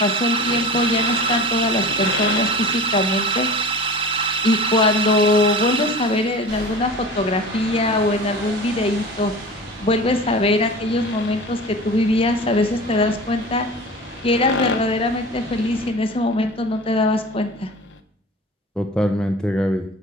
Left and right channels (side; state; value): both; normal; correlation 0.36